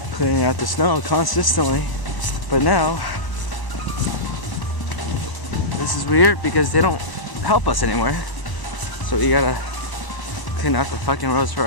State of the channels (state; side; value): late; right; 1.0 ms